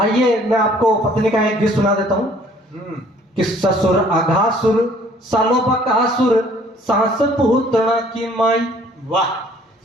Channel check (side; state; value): both; normal; correlation 0.57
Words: मैं आपको पत्नी का एक गीत सुना देता हूँ कि ससुर अघासुर सालो बकासुर सास पूतना की माई। वाह।